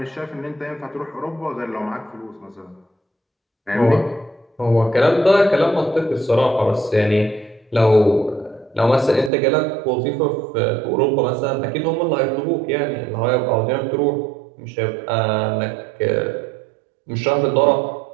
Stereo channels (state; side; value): drops out; left; at 9.3 s